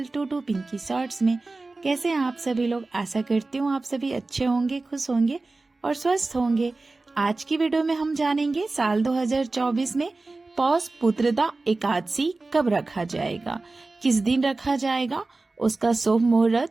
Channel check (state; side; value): quieter; left; 3.4 dB